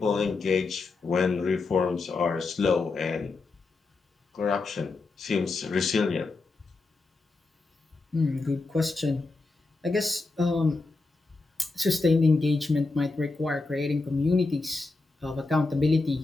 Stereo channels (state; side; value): quieter; right; 3.7 dB